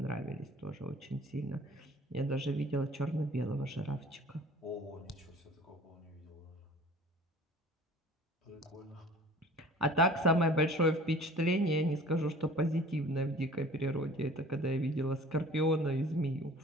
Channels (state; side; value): normal; both; correlation 0.46